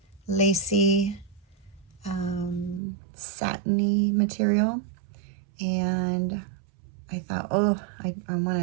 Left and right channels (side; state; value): left; drops out; at 2.8 s